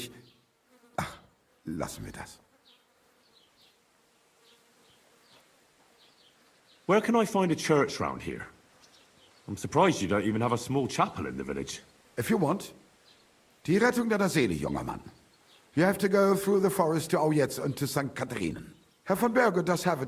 Ach, lassen wir das. Where can I find a church round here? I'm surprised you don't even have a small chapel in the village. If you want. Die Rettung deiner Seele, junger Mann. You have to go through the forest to Aujetz and to St. Katharinen. Herr von Berger does have a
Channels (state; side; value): identical; both; correlation 1.00